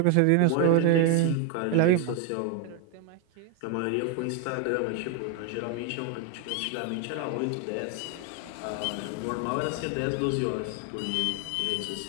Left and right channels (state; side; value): different; both; correlation 0.01